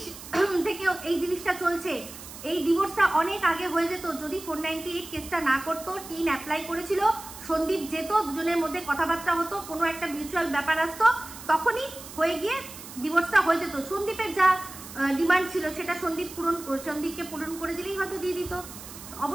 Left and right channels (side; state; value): right; noise; hiss, 14 dB below the sound